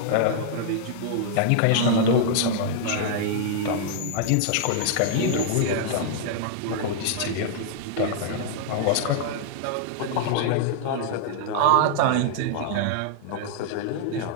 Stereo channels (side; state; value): both; different; correlation -0.01